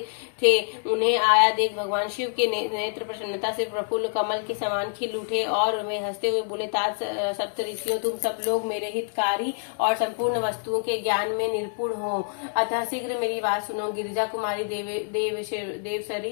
थे। उन्हें आया देख भगवान शिव के नेत्र प्रसन्नता से प्रफुल्ल कमल के समान खिल उठे और वे हंसते हुए बोले, तात सप्तऋषियों, तुम सब लोग मेरे हितकारी और संपूर्ण वस्तुओं के ज्ञान में निपुण हो, अतः शीघ्र मेरी बात सुनो। गिरिजा कुमारी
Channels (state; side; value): silent; right; digital silence